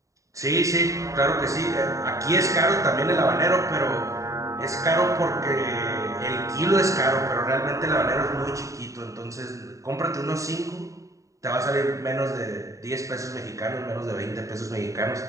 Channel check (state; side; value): late; left; 0.16 ms